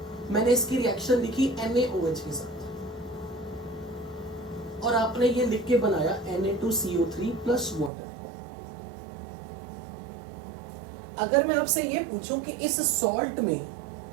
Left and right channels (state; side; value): drops out; left; at 7.9 s